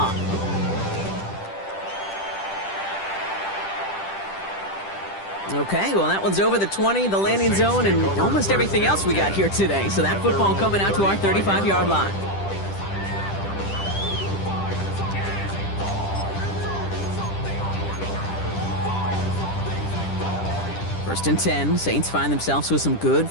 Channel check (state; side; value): late; right; 10 ms